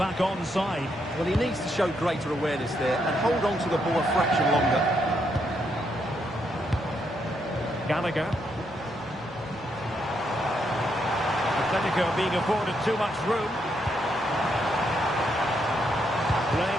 onside. Well, he needs to show greater awareness there and hold on to the ball a fraction longer. Gallagher. Atletico being afforded too much room.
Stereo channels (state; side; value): normal; both; correlation 0.77